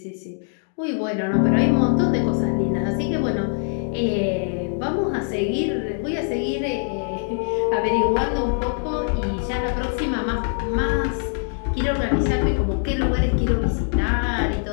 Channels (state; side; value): silent; right; 60 dB below the other